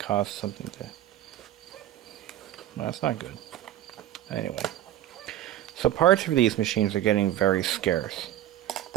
something to... No, that's not good. Anyway. So parts for these machines are getting very scarce.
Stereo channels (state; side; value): quieter; left; 12.7 dB